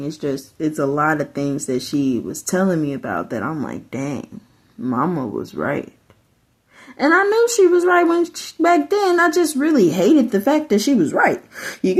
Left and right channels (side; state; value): both; identical; correlation 1.00